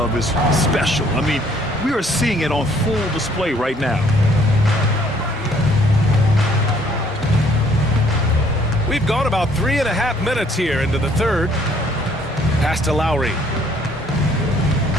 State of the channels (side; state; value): both; normal; correlation 0.62